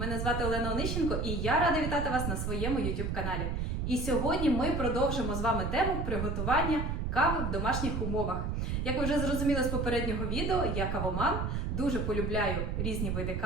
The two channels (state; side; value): noise; right; rumble, 1 dB below the sound